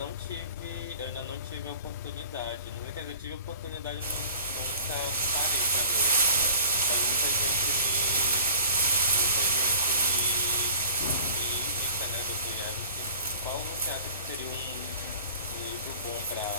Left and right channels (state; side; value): inverted; both; correlation -0.45